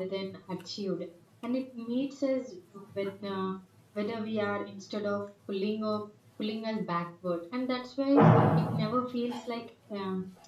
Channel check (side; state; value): both; identical; correlation 1.00